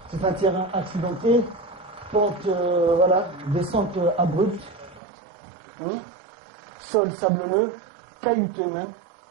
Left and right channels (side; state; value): left; drops out; at 5.0 s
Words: C'est un terrain accidenté, pente, descente abrupte, sol sablonneux, caillouteux même.